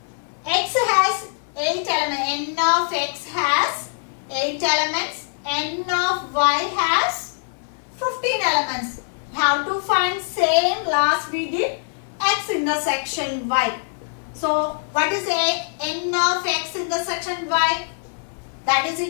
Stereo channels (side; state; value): right; silent; 63 dB below the other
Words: x has 8 elements, n of x has 8 elements, n of y has 15 elements. Have to find same last we did x intersection y. So what is n of x intersection y? That is